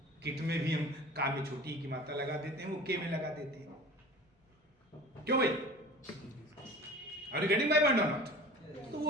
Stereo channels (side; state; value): both; normal; correlation 0.40